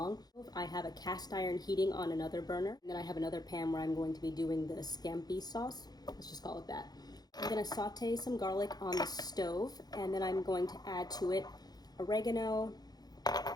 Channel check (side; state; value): right; late; 0.19 ms